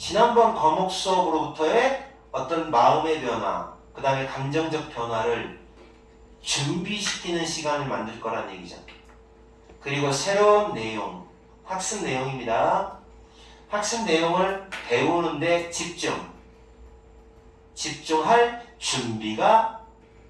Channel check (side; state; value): both; identical; correlation 1.00